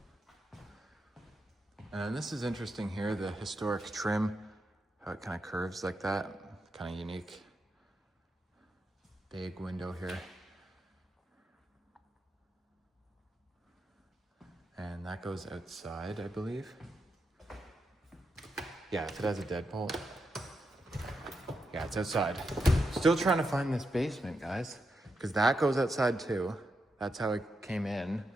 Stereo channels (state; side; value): normal; both; correlation 0.85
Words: And this is interesting here, the historic trim, how it kind of curves like that, kind of unique. Big window here. And that goes outside, I believe. Yeah, if it has a deadbolt. Yeah, it's outside. Still trying to find this basement, guys, because that goes outside too. That's how it came in.